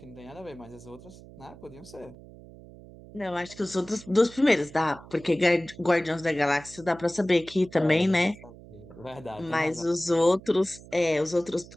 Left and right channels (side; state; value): right; noise; hum, 19 dB below the sound